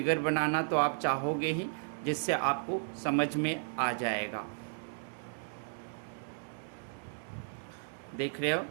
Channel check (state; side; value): silent; left; 55 dB below the other